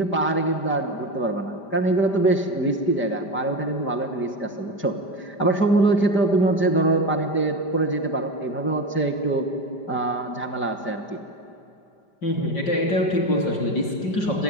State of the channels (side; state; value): right; late; 5.1 ms